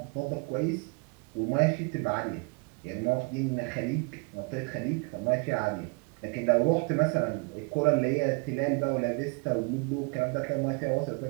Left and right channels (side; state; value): left; quieter; 32.1 dB